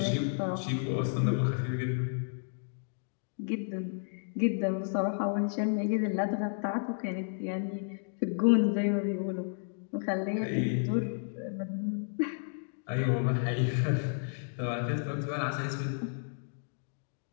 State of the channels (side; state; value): right; silent; digital silence